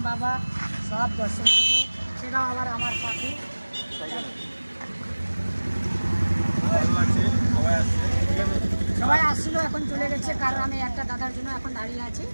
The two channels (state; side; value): inverted; both; correlation -1.00